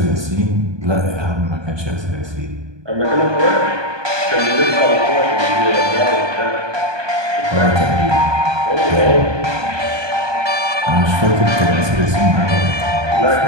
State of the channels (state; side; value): late; left; 1.2 ms